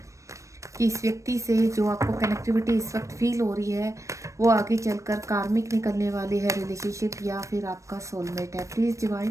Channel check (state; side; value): late; left; 0.15 ms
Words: कि इस व्यक्ति से जो आपको कनेक्टिविटी इस वक्त फील हो रही है वो आगे चलकर कार्मिक निकलने वाली है रिलेशनशिप या फिर आपका सोलमेट है। प्लीज़